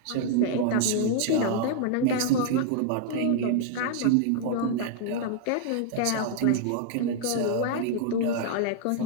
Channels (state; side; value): different; both; correlation -0.01